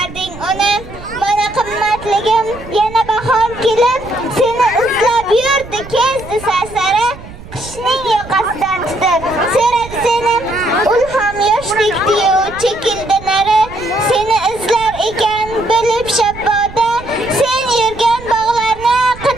uni. Mana qimmatligim yana bahor kelib seni izlab yurdi kezdi sarsara, qishning yoqasidan tutib so'radi seni, ulham yoshdek diyu chekildi nari. Seni izlar ekan bo'lib shabboda, sen yurgan bog'larni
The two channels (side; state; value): right; noise; rumble, 16 dB below the sound